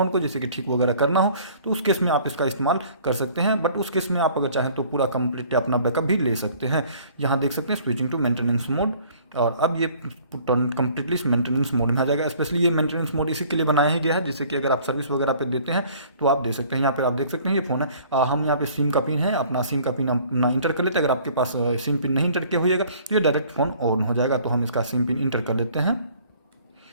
को, जैसे कि ठीक वगैरह करना हो, तो उस केस में आप इसका इस्तेमाल कर सकते हैं। बट उस केस में आप अगर चाहें तो पूरा कंप्लीट अपना बैकअप भी ले सकते हैं। यहाँ देख सकते हैं स्विचिंग टू मेंटेनेंस मोड, और अब ये कंप्लीटली मेंटेनेंस मोड में आ जाएगा। स्पेशली ये मेंटेनेंस मोड इसी के लिए बनाया ही गया है, जैसे कि अगर आप सर्विस वगैरह पे देते हैं तो आप दे सकते हैं। यहाँ पे आप देख सकते हैं ये फ़ोन है, हम यहाँ पे सिम का पिन है, अपना सिम का पिन अपना इंटर कर लेते हैं। अगर आपके पास सिम पिन नहीं इंटर किया होइएगा तो ये डायरेक्ट फ़ोन ऑन हो जाएगा। तो हम इसका सिम पिन इंटर कर लेते हैं।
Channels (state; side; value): inverted; both; correlation -0.54